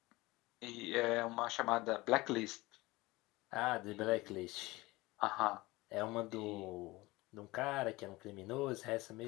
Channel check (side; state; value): right; quieter; 20.8 dB